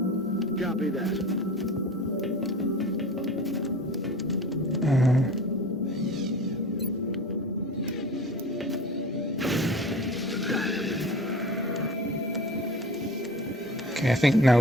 Copy that. Okay, I think now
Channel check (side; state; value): both; normal; correlation 0.39